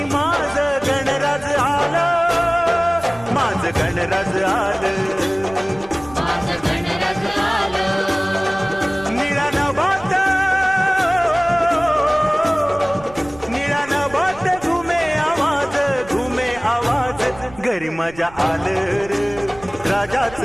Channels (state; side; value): noise; right; rumble, 20 dB below the sound